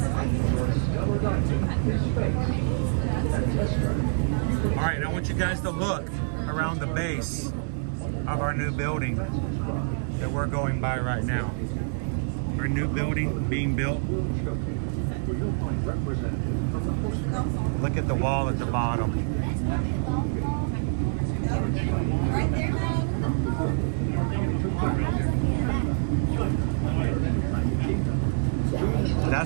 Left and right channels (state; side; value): silent; left; digital silence